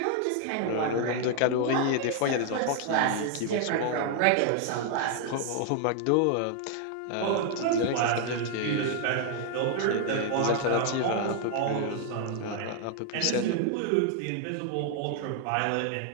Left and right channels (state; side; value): different; both; correlation 0.00